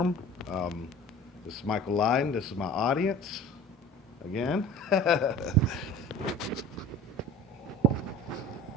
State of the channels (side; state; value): both; normal; correlation 0.41